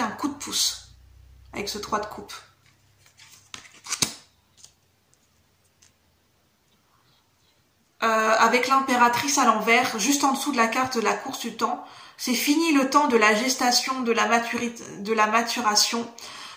coup de pouce avec ce 3 de coupe. Avec l'impératrice à l'envers, juste en dessous de la carte de la course du temps, c'est fini le temps de la gestation, de la maturation.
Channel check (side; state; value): both; identical; correlation 1.00